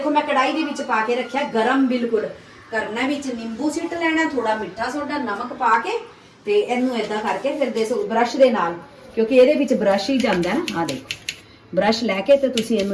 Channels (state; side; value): identical; both; correlation 1.00